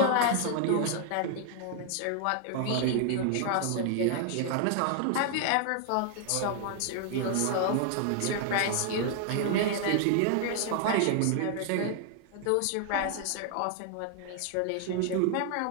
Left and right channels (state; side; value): different; both; correlation 0.00